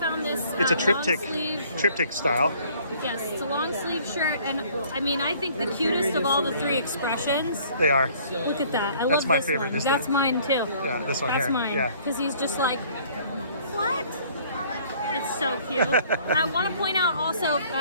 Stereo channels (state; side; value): inverted; both; correlation -0.57